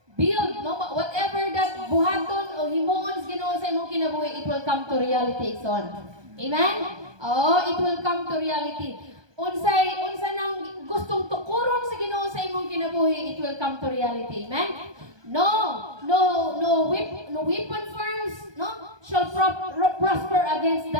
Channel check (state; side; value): late; left; 1.2 ms